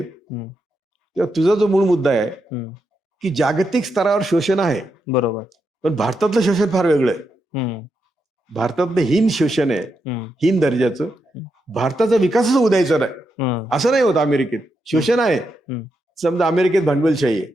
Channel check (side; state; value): both; normal; correlation 0.84